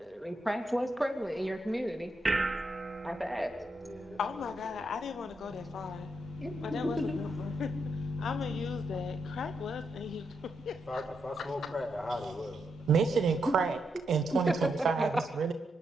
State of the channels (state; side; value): normal; both; correlation 0.82